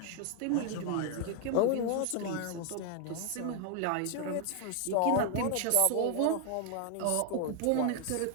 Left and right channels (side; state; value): both; different; correlation 0.00